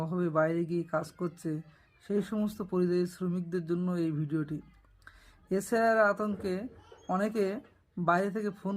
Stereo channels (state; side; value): identical; both; correlation 1.00